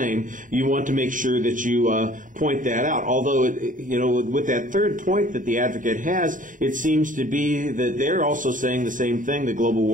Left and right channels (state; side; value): late; left; 0.38 ms